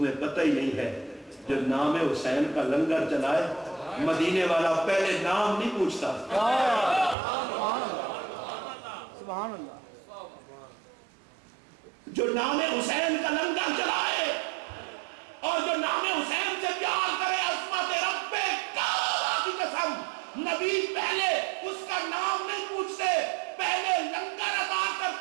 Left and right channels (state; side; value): drops out; left; at 7.2 s